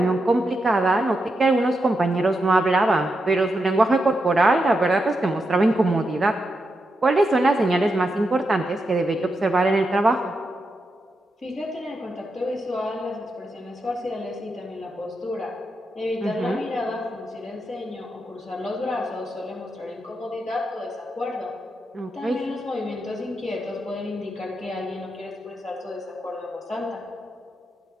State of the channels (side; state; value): both; normal; correlation 0.85